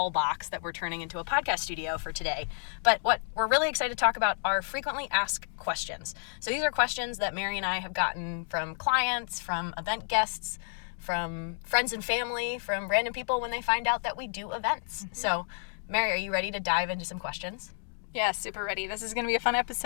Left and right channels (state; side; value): silent; right; digital silence